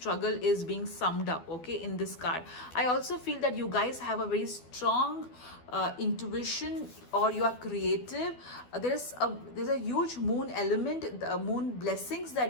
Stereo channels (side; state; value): right; late; 12 ms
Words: is being summed up, okay, in this card. I also feel that you guys have a very strong intuition, or you are creative. There's a huge moon element, the moon blessings